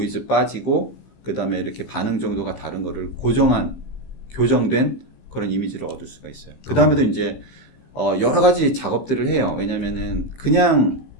빠지고 그다음에 이렇게 반응 정도가 다른 거를 교정된 그런 이미지를 얻을 수가 있어요. 그다음에도 이제 여러 가지 작업들을 해요. 왜냐면은 그냥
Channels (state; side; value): late; right; 15 ms